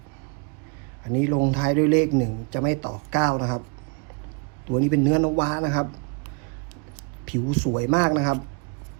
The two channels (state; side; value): quieter; left; 32.5 dB